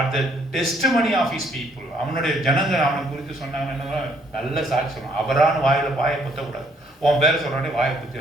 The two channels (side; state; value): both; normal; correlation 0.67